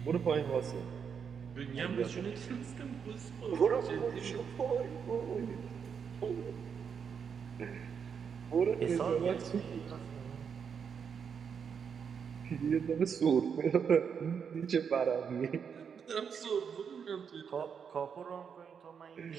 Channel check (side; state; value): left; quieter; 6.9 dB